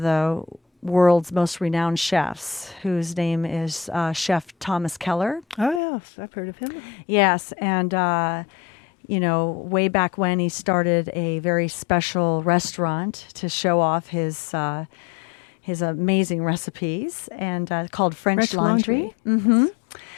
the world's most renowned chefs, whose name is Chef Thomas Keller. Oh, yes, I've heard of him. Yes, and, way back when he started a very special restaurant to show off his amazing recipes, and called French Laundry. Mm-hmm.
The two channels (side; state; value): right; drops out; at 5.8 s